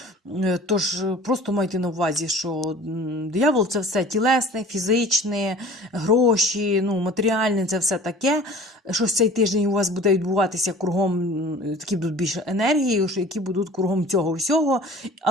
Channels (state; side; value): normal; both; correlation 0.45